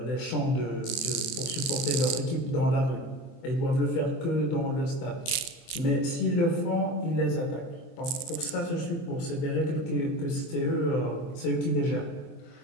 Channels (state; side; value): late; right; 23 ms